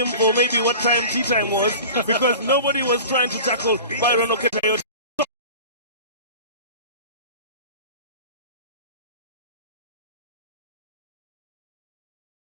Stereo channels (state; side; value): inverted; both; correlation -0.37